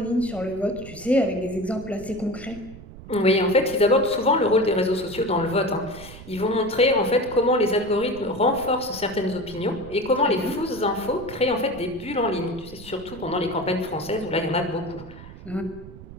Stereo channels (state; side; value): noise; right; rumble, 16 dB below the sound